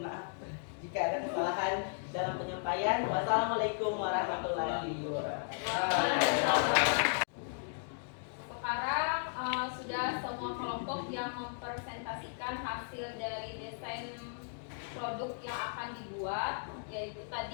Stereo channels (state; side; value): silent; right; digital silence